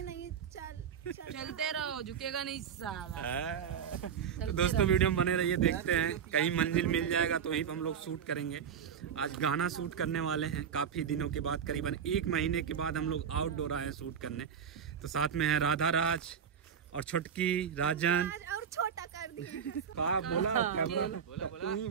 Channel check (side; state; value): left; quieter; 7.8 dB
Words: नहीं चलते रहो, झुकेगा नहीं साला। तो दोस्तों वीडियो में बने रहिए, देखते हैं कहीं मंजिल मिल जाएगा तो वहीं पर हम लोग शूट करेंगे। आज गाना शूट करने वाले हैं काफी दिनों के बाद, करीबन 1 महीने के बाद हम लोग आउटडोर आए हैं शूट करने। तो साथ में है राधा राज और छोटकी राजन। और छोटा कर दिया। कहा बोला कैमरा तू ही